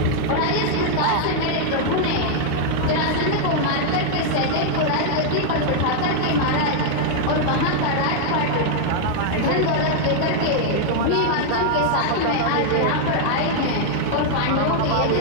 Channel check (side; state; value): both; different; correlation 0.00